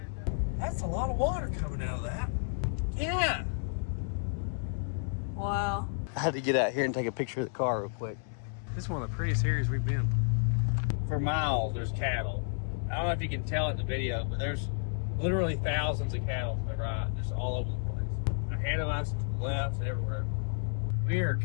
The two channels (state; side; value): silent; right; digital silence